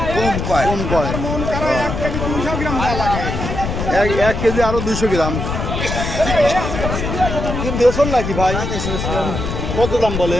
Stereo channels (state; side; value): noise; left; rumble, 3 dB below the sound